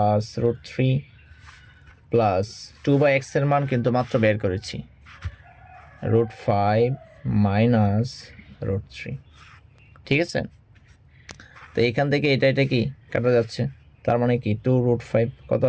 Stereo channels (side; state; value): both; identical; correlation 1.00